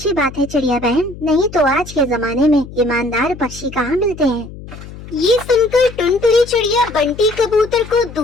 बात है चिड़िया बहन, नहीं तो आज के जमाने में ईमानदार पक्षी कहाँ मिलते हैं। ये सुनकर टुनटुनी चिड़िया बंटी कबूतर को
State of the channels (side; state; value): left; noise; hum, 15 dB below the sound